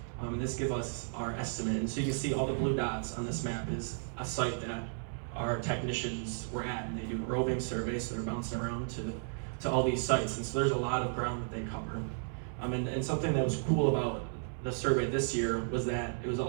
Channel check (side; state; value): left; silent; 55 dB below the other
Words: and this gives us our estimate. And so you can see all the blue dots on this map is a site that our technicians were at, and they do a roving survey, so they're bouncing around to all these sites, and so there's a lot of ground that they cover. And something that was cool about the survey this year was that it was